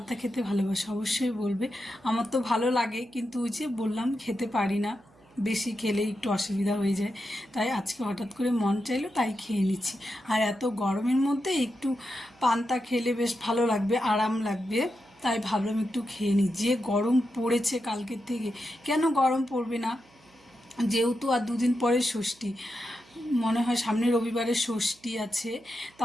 খেতে ভালোবাসে অবশ্যই বলবে। আমার তো ভালো লাগে, কিন্তু ওই যে বললাম খেতে পারি না, বেশি খেলে একটু অসুবিধা হয়ে যায়। তাই আজকে হঠাৎ করে মন চাইলো, তাই খেয়ে নিচ্ছি। আর এত গরমের মধ্যে একটু পান্তা খেলে বেশ ভালো লাগবে, আরাম লাগবে। তাই ভাবলাম একটু খেয়ে নিই। যে গরম পড়েছে কালকের থেকে, কেন গরম পড়বে না, যেহেতু আর দুদিন পরে ষষ্ঠী, মনে হয় সামনে রবিবারে ষষ্ঠী আছে,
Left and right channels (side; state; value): right; noise; hum, 30 dB below the sound